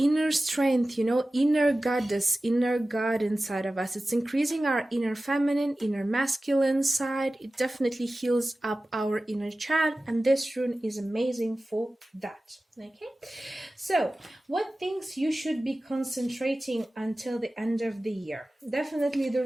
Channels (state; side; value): normal; both; correlation 0.96